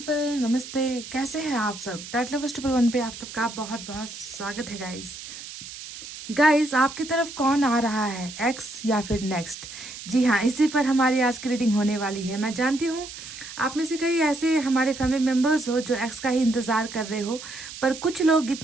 नमस्ते। कैसे हैं आप सब? टाइट लवर्स ट्रिपल वन पे आप सबका बहुत बहुत स्वागत है गाइस। आपकी तरफ कौन आ रहा है, एक्स या फिर नेक्स्ट? जी हाँ, इसी पर हमारी आज की रीडिंग होने वाली है। मैं जानती हूँ आप में से कई ऐसे हमारे फैमिली मेम्बर्स हो जो एक्स का ही इंतज़ार कर रहे हो, पर कुछ लोग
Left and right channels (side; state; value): right; noise; hiss, 12 dB below the sound